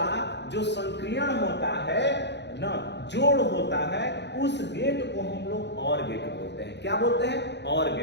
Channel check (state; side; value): late; right; 0.50 ms